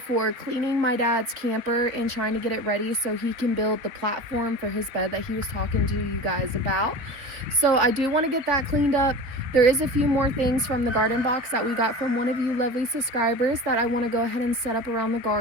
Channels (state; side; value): late; left; 3.9 ms